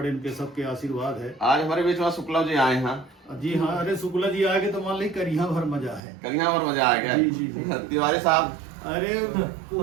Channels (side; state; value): left; drops out; at 6.0 s